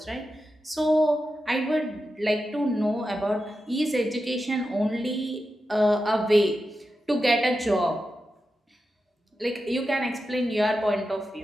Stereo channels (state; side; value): normal; both; correlation 0.90